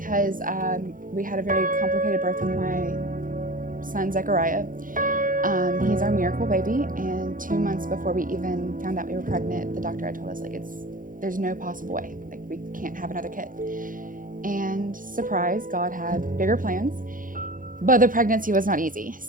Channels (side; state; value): left; late; 0.40 ms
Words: we had a very complicated birth with my son Zechariah. He's our miracle baby, and 2 months before we even found out we were pregnant, the doctor had told us there's no possible way, we can't have another kid. And surprise, God had bigger plans, but the pregnancy was not easy.